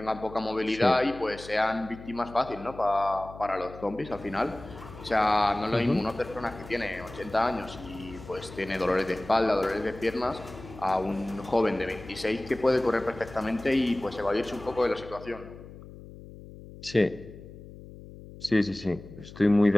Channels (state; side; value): noise; left; hum, 16 dB below the sound